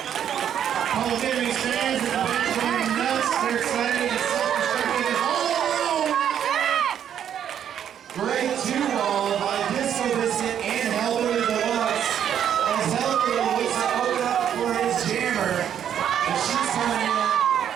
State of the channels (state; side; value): quieter; left; 9.4 dB